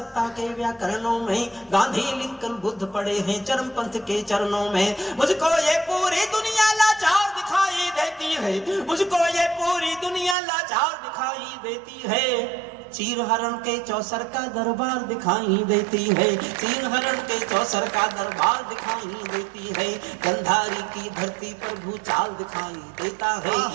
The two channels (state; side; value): drops out; left; at 10.4 s